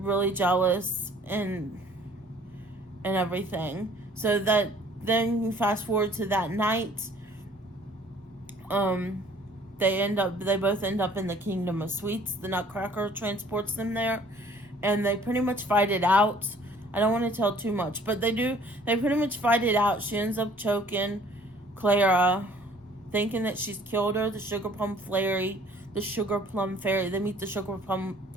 jealous and everything. So that then you fast forward to that night. They both end up in the Kingdom of Sweets. The Nutcracker transports them there, and they pretty much fight it out. I don't want to tell too much, but they do. They pretty much fight it out. She ends up choking Clara, thinking that she's killed her. The sugar plum fairy. They meet the sugar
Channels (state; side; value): normal; both; correlation 0.55